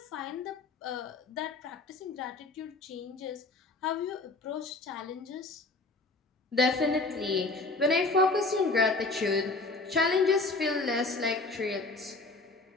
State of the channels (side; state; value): right; quieter; 3.4 dB